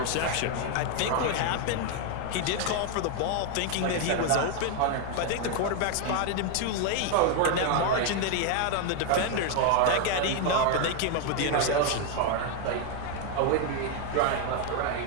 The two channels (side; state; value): both; different; correlation 0.01